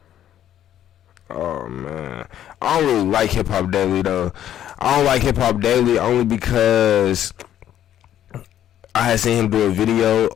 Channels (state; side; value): quieter; right; 11.1 dB